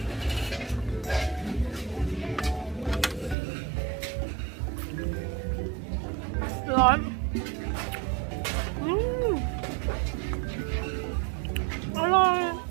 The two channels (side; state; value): left; drops out; at 3.4 s